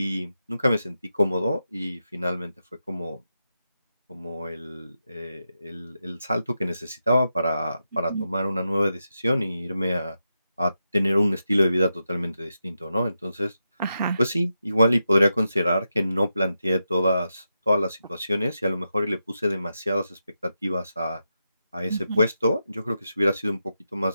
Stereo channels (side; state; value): both; inverted; correlation -0.87